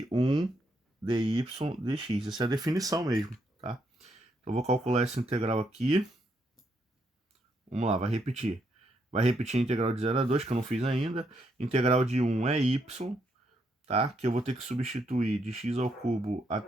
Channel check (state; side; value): normal; both; correlation 0.76